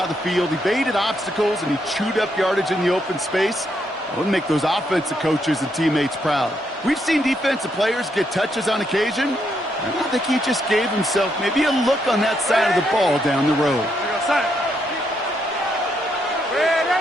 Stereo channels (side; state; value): both; normal; correlation 0.77